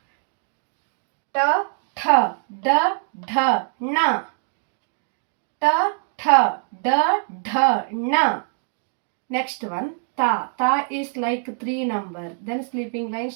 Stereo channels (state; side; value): silent; left; 59 dB below the other